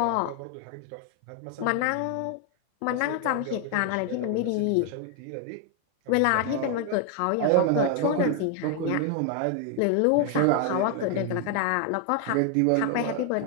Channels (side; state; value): both; different; correlation 0.00